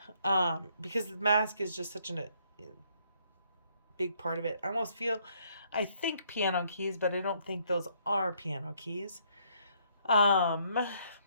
Because the mask is just such a big part of it. I think piano keys, but I don't think those are piano keys. I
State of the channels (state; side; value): inverted; both; correlation -0.68